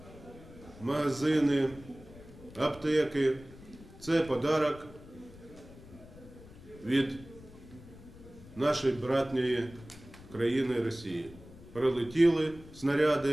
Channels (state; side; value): noise; left; rumble, 19 dB below the sound